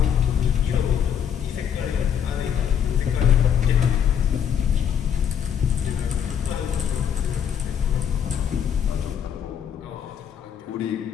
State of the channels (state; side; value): quieter; right; 8.4 dB